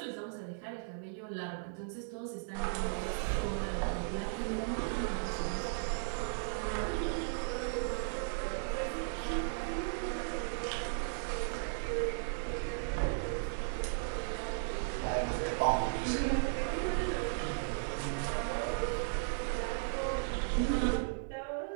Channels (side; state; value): left; silent; 54 dB below the other